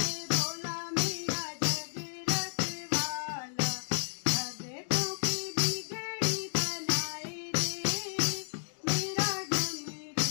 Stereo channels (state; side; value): silent; right; digital silence